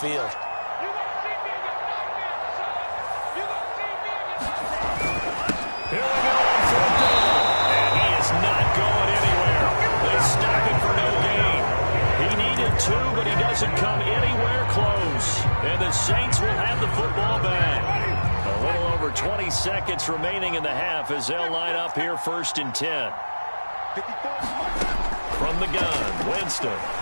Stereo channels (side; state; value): both; inverted; correlation -1.00